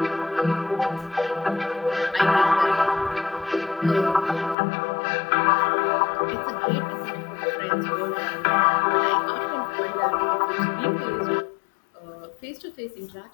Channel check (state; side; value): drops out; right; at 4.5 s